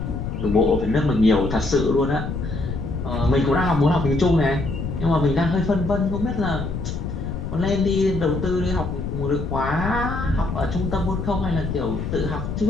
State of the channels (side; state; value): left; noise; rumble, 5 dB below the sound